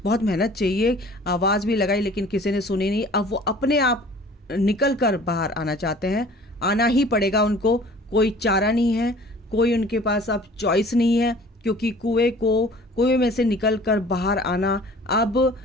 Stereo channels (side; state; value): both; normal; correlation 0.48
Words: बहुत मेहनत चाहिए। आवाज़ भी लगाई लेकिन किसी ने सुनी नहीं। अब वो अपने आप निकल कर बाहर आना चाहते हैं, आना ही पड़ेगा उनको, कोई चारा नहीं है, कोई उनके पास अब चॉइस नहीं है, क्योंकि कुएं में से निकल कर बाहर आना अब